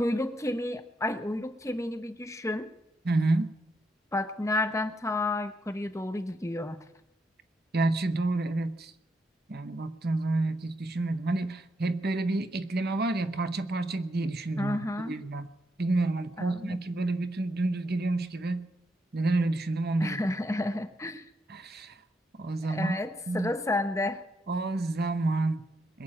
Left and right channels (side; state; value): both; normal; correlation 0.80